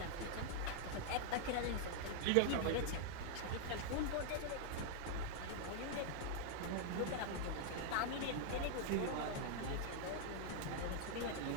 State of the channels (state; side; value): different; both; correlation 0.00